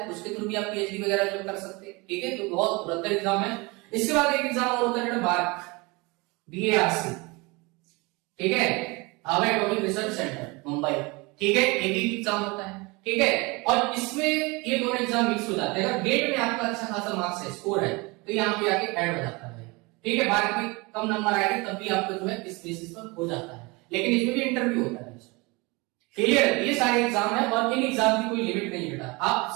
उसके थ्रू भी आप पीएचडी वगैरह जो कर सकते हैं। ठीक है, तो बहुत बेहतर एग्जाम है। इसके बाद एक एग्जाम और होता है BARC, BARC, ठीक है, Harvard atomic research centre Mumbai. ठीक है, एक ही एग्जाम होता है। ठीक है, और इसमें ये दोनों एग्जाम मिक्स हो जाते हैं। अगर गेट में आपका अच्छा खासा मार्क्स है, स्कोर है, तो यहाँ पे आके ऐड हो जाता है। ठीक है, BARC में कम नंबर आएंगे तब भी आपको जो है इस बेसिस पर हो जाता है, लेकिन इसमें भी इंटरव्यू होता है। क्लियर है, ये सारे एग्जाम है, और इन एग्जाम की कोई लिमिट नहीं बेटा। आप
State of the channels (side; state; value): left; quieter; 25.9 dB